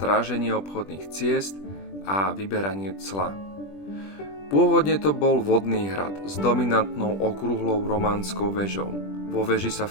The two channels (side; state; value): right; late; 20 ms